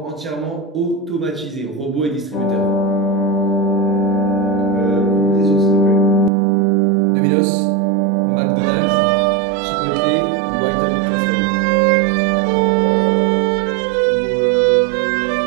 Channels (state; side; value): drops out; left; at 6.3 s